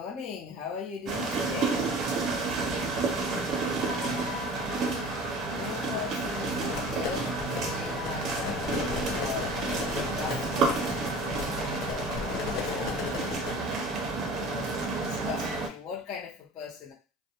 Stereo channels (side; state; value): both; normal; correlation 0.41